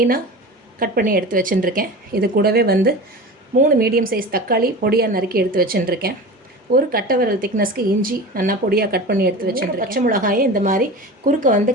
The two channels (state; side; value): normal; both; correlation 0.32